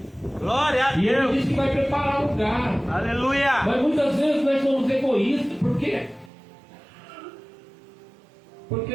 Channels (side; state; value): left; drops out; at 6.3 s